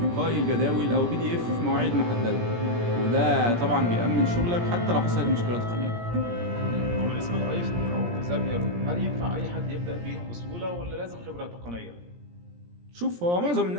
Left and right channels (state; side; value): late; left; 17 ms